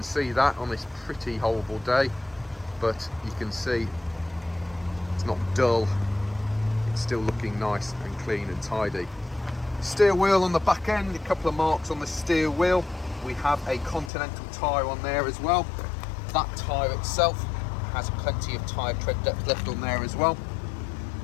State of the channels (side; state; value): right; drops out; at 14.1 s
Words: see that on this pretty horrible day, but you can see it's not dull. It's still looking nice and clean and tidy. Steel wheel on the back end, a couple of marks on the steel wheel. We have a Continental tyre on there as well. That tyre itself has plenty of tyre tread depth left on there as well.